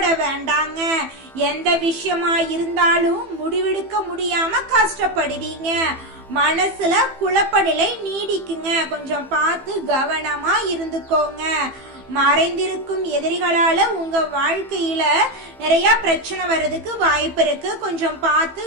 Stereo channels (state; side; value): late; left; 15 ms